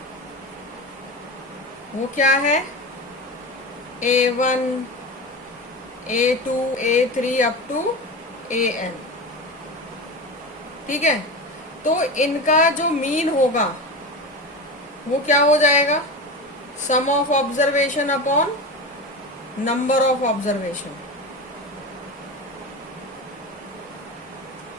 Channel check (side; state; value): both; normal; correlation 0.26